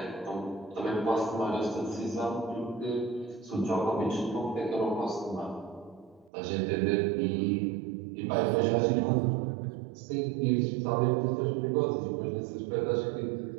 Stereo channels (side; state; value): left; drops out; at 6.3 s